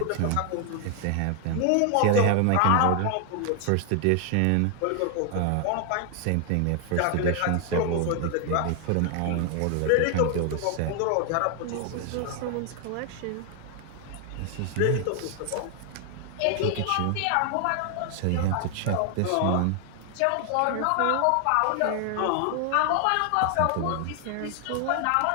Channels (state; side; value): different; both; correlation 0.00